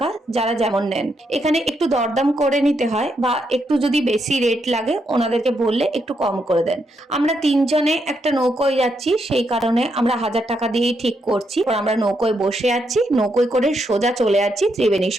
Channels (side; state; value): both; normal; correlation 0.79